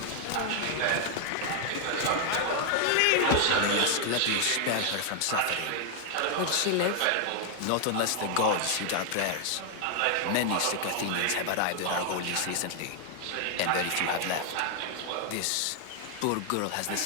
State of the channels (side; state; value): both; different; correlation 0.00